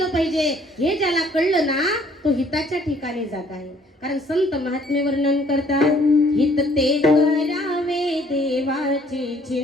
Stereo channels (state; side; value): normal; both; correlation 0.61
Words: पाहिजे हे ज्याला कळलं ना तो हिताच्या ठिकाणी जागा आहे. कारण संत महात्मे वर्णन करतात, हित ते करावे देवाचे